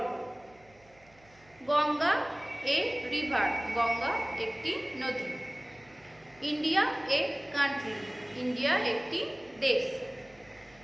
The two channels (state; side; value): noise; right; hum, 29 dB below the sound